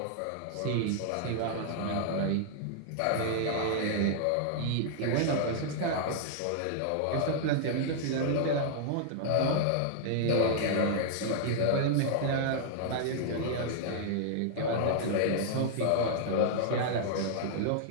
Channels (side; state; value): both; different; correlation -0.01